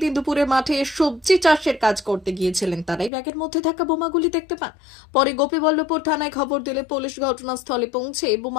দিন দুপুরে মাঠে সবজি চাষের কাজ করতে গিয়েছিলেন। তারাই ব্যাগের মধ্যে থাকা বোমাগুলি দেখতে পান। পরে গোপীবল্লভপুর থানায় খবর দিলে পুলিশ ঘটনাস্থলে পৌঁছে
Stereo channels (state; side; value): drops out; right; at 3.1 s